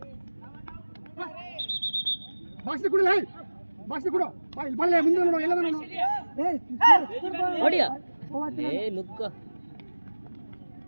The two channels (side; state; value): both; inverted; correlation -1.00